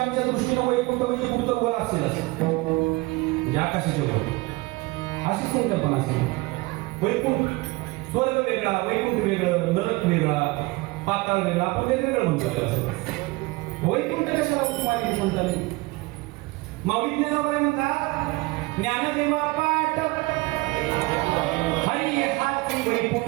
आमच्या दृष्टीनं वैकुंठ म्हणजे कुठं वर असेल असं म्हणजे आकाशाच्या वर अशी संकल्पना असेल. वैकुंठ स्वर्ग वेगळा, वैकुंठ वेगळं, नरक वेगळा, पाताळ वेगळा, आपण वेगवेगळं म्हणतो त्याला. वैकुंठ कशाला उपमानी संतांनी माऊली ज्ञानोबा म्हणतात ज्ञानदेवा पाठ हरी हाती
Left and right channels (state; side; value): quieter; left; 22.8 dB